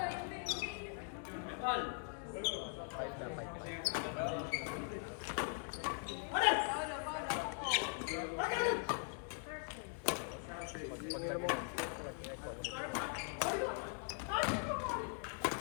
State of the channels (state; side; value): silent; right; 50 dB below the other